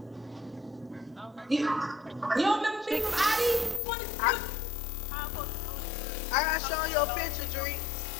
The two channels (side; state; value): right; drops out; at 3.8 s